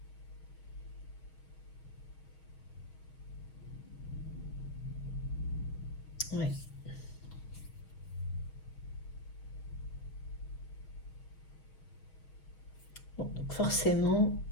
Ouais. Bon, donc forcément,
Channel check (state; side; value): late; right; 6.4 ms